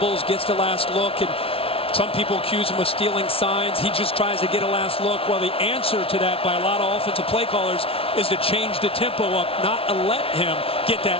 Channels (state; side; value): late; right; 0.27 ms